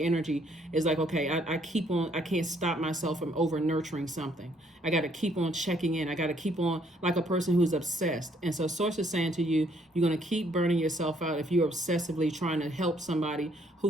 energy is like, okay, I can't stop myself from over nurturing something. I got to keep on checking in. I got to keep on like a person who's obsessed. And so Source is saying to you, you're going to keep burning yourself out if you're obsessively trying to help somebody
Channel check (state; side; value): normal; both; correlation 0.67